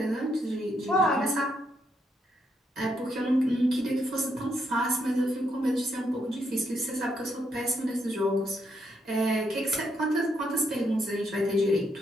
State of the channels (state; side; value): normal; both; correlation 0.77